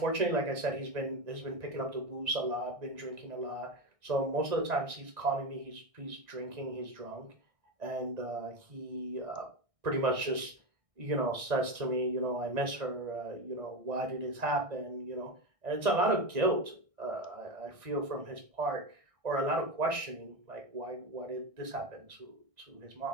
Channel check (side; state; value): left; late; 1.6 ms